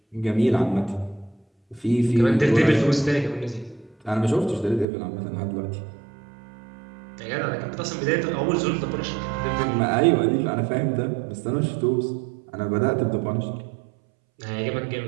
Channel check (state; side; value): drops out; left; at 4.9 s